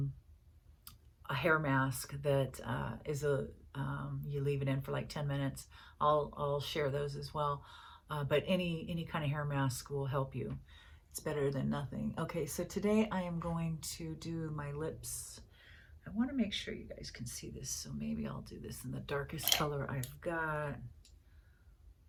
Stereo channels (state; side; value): identical; both; correlation 1.00